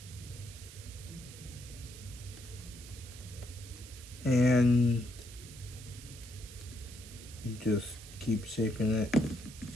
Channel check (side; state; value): right; noise; hiss, 16 dB below the sound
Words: And you just keep shaping it